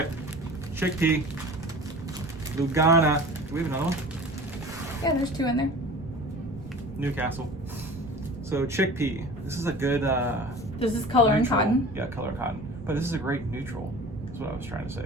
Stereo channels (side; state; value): right; noise; rumble, 16 dB below the sound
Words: chickpea, Lugana. Do we have another one? Yeah, there's 2 in there. Newcastle. So chickpea. This is a good. This is color and neutral. cotton. Yeah, color and cotton. But this is a great neutral. That's what I was trying to